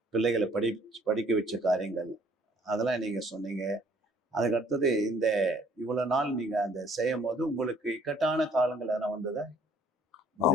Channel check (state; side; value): normal; both; correlation 0.59